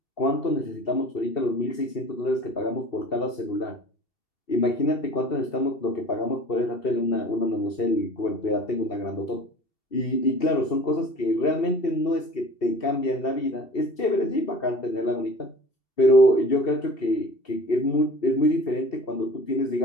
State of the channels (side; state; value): right; late; 2.7 ms